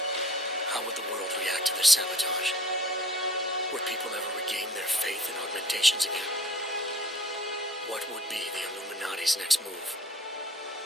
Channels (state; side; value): normal; both; correlation 0.51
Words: How would the world react to this sabotage? Would people ever regain their faith in augmentations again? What would be the Illuminati's next move?